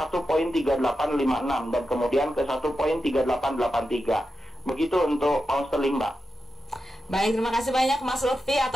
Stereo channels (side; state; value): both; normal; correlation 0.89